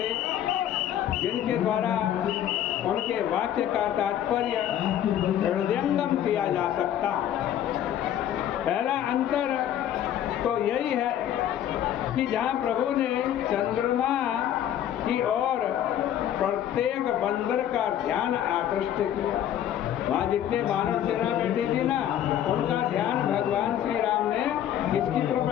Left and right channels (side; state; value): right; quieter; 10.8 dB